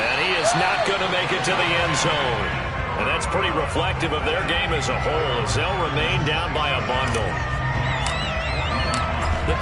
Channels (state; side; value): identical; both; correlation 1.00